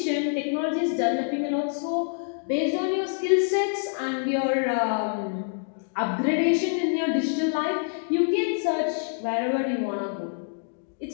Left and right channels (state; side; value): silent; right; digital silence